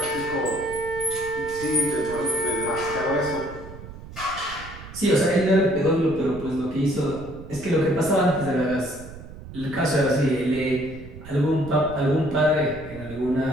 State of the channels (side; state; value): right; noise; rumble, 15 dB below the sound